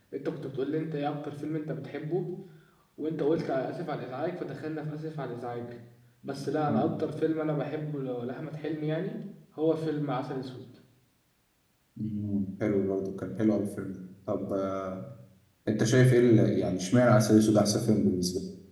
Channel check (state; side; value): identical; both; correlation 1.00